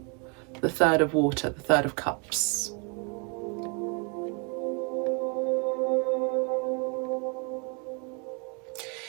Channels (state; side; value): quieter; left; 35.1 dB